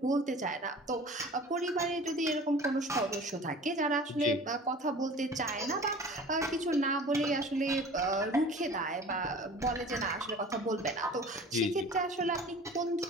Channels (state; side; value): normal; both; correlation 0.43